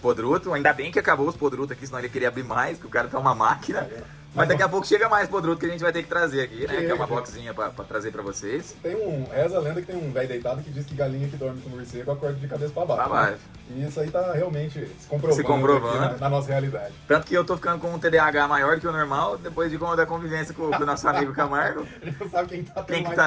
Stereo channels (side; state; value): both; identical; correlation 1.00